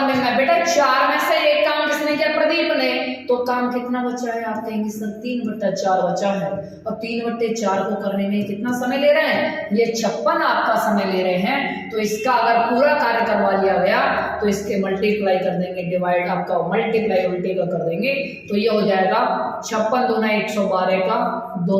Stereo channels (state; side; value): identical; both; correlation 1.00